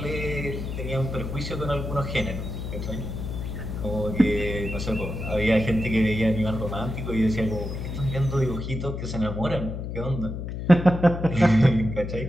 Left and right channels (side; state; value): left; noise; hum, 6 dB below the sound